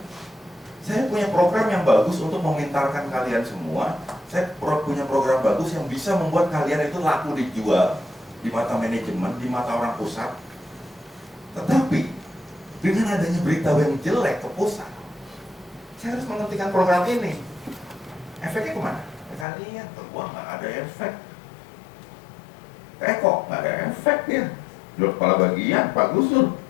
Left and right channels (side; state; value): right; drops out; at 19.5 s